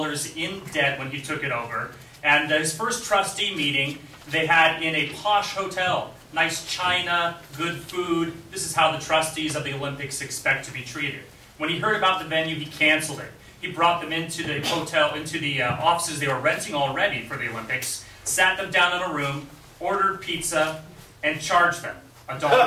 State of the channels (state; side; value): identical; both; correlation 1.00